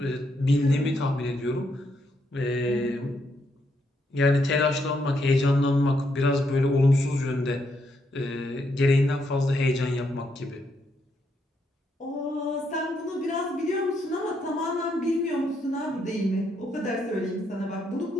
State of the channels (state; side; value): normal; both; correlation 0.77